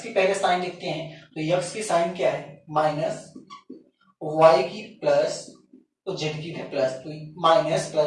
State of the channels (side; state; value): both; identical; correlation 1.00